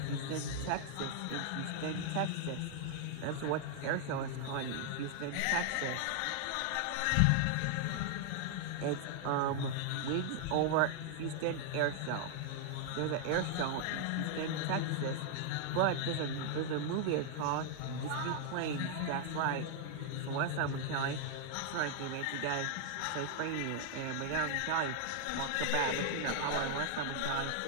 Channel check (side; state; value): both; different; correlation 0.00